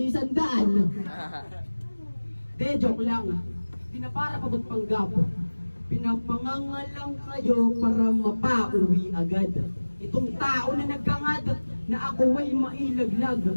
100. De, joke lang. Di na para pa magpanggap. Pinapangangalang kayo para mapauwi agad. Itong tao na nagkangad na ako ay mailaglag.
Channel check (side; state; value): both; inverted; correlation -1.00